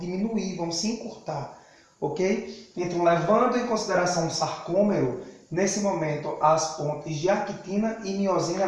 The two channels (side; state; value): both; identical; correlation 1.00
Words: vão se encurtar, ok? Então, levando em consideração o sarcômero, nesse momento as pontes de actina e miosina